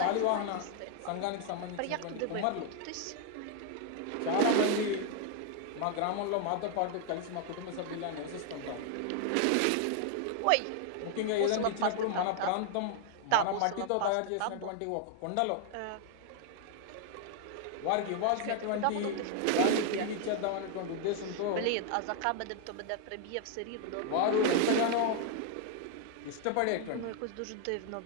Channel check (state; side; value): different; both; correlation 0.00